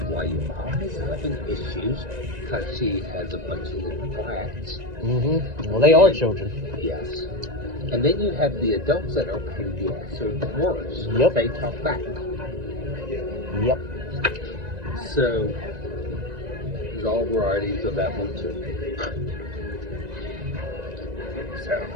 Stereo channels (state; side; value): late; left; 1.9 ms